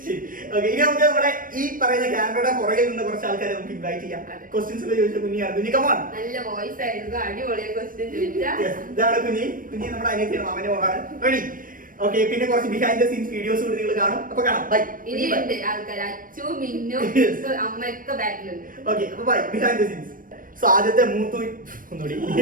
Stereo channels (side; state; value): left; late; 0.40 ms